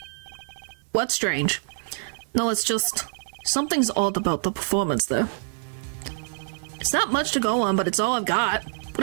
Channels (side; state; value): left; silent; digital silence